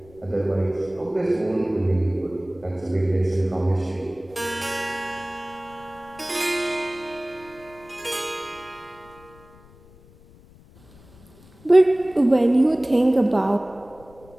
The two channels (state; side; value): noise; left; rumble, 25 dB below the sound